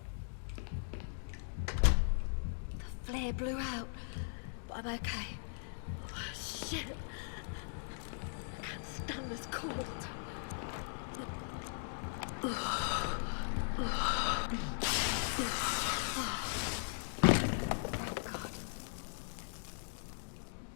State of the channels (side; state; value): right; silent; digital silence